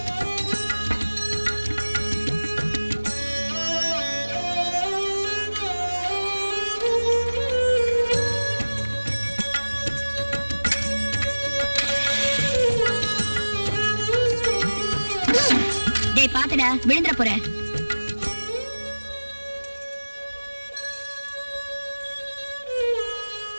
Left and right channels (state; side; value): inverted; both; correlation -1.00